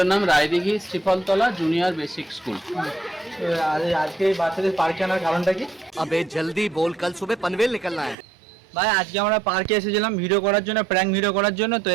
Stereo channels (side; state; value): left; drops out; at 8.2 s